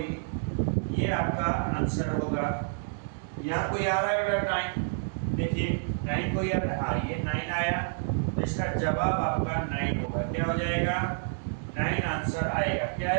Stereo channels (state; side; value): silent; left; digital silence